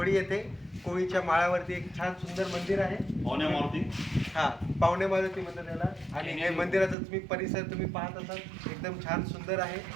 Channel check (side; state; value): left; drops out; at 7.0 s